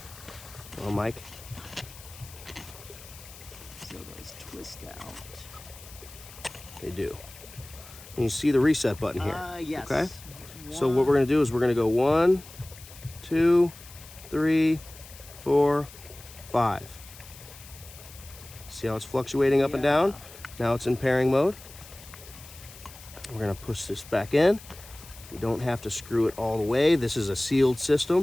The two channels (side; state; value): left; noise; hiss, 18 dB below the sound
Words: Well, Mike. So those twist out. They do. And you see the reset button here. Yes. Okay. So what we're going to do is we're going to go 1, 2, 3, 4, 5. See how it's fluctuating up and down? Now it's in pairing mode. We're going to push this back in. We don't have to screw it all the way. This is a sealed